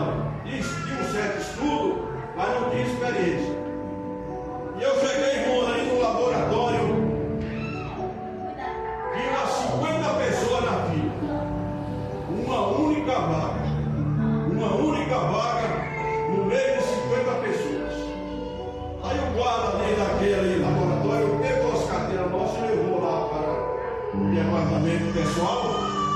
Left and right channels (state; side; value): identical; both; correlation 1.00